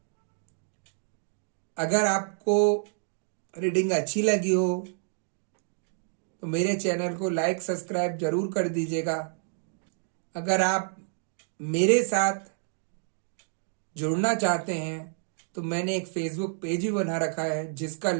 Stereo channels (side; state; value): left; silent; digital silence